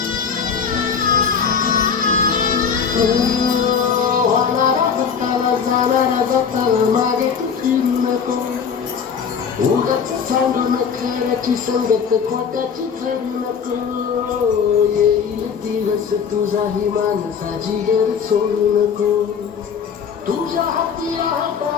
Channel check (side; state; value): right; quieter; 6.6 dB